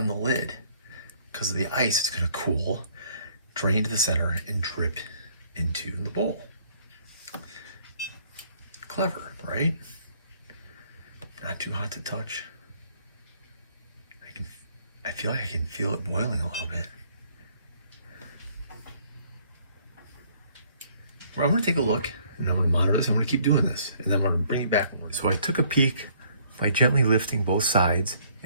the lid. Because of the ice, it's going to cool, drain to the center, and drip into the bowl. Clever, right? Not too hot to touch. I feel like I can feel it boiling a little bit. Well, I'm going to take a look, and I'm going to monitor this. I'm going to keep doing this, and then I'm going to bring it back. So I took a peek by gently lifting both sides,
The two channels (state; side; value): inverted; both; correlation -0.62